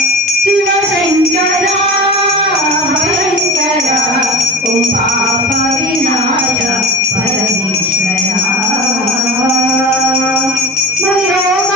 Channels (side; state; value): both; normal; correlation 0.33